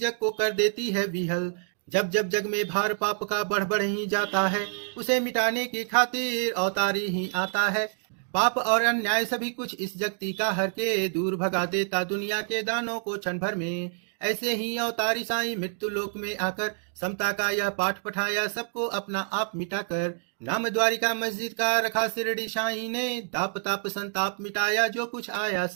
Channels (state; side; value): silent; left; 60 dB below the other